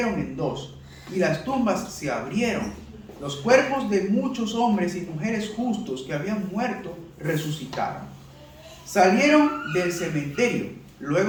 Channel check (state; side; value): identical; both; correlation 1.00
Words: en dos y las tumbas se abrieron. Los cuerpos de muchos hombres y mujeres justos que habían muerto resucitaron. Salieron del cementerio